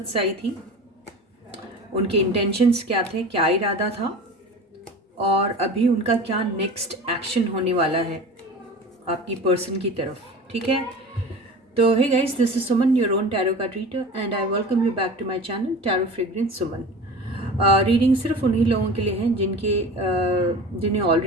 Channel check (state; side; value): normal; both; correlation 0.36